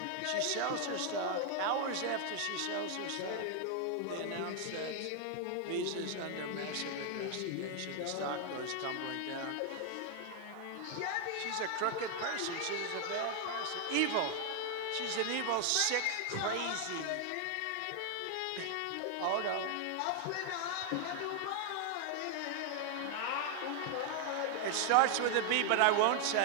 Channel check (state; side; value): different; both; correlation 0.00